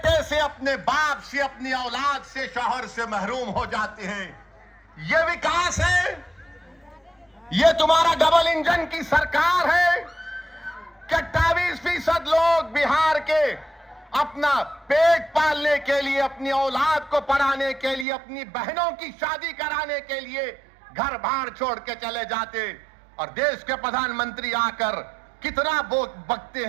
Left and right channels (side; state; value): left; drops out; at 18.1 s